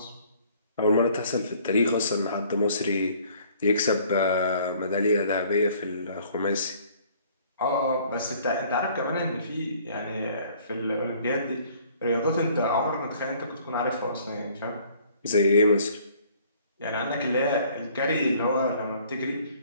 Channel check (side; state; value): both; inverted; correlation -0.57